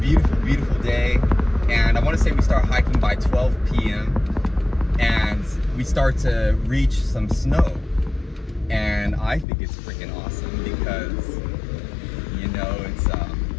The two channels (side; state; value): right; drops out; at 9.5 s